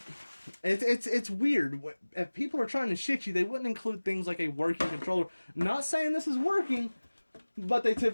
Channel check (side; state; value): both; inverted; correlation -1.00